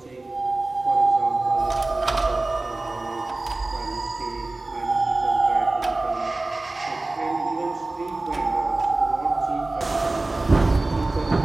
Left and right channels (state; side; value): quieter; left; 3.0 dB